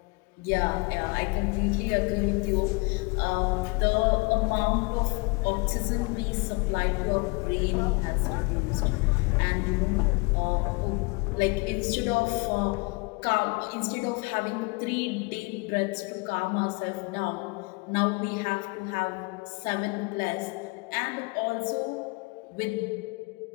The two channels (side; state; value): right; quieter; 28.2 dB